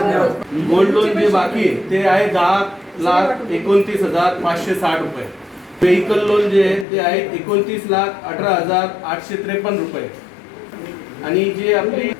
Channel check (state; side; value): drops out; right; at 6.9 s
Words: गोल्ड लोन जे बाकी आहे ते आहे 10,29,560 रुपये। व्हेकल लोन जे आहे ते आहे 29,18,853 रुपये आणि जे आपली